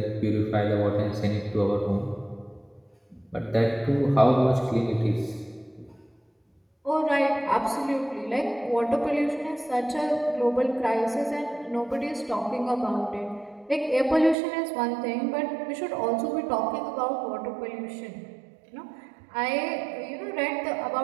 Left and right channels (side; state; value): left; drops out; at 14.4 s